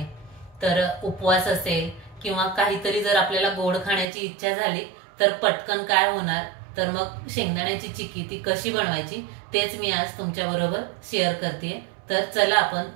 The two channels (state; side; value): drops out; left; at 4.0 s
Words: तर उपवास असेल किंवा काहीतरी जर आपल्याला गोड खाण्याची इच्छा झाली तर पटकन काय होणार, तर मग शेंगदाण्याची चिक्की ती कशी बनवायची तेच मी आज तुमच्या बरोबर शेअर करते। तर चला आपण